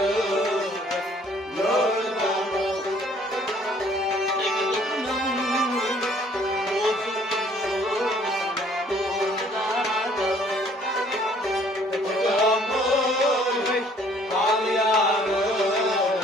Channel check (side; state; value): both; normal; correlation 0.59